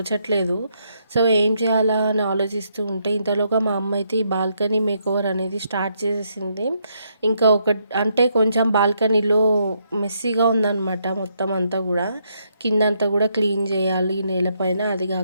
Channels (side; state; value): both; inverted; correlation -0.75